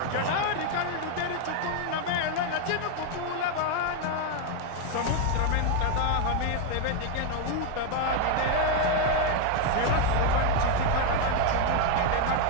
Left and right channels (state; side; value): different; both; correlation 0.01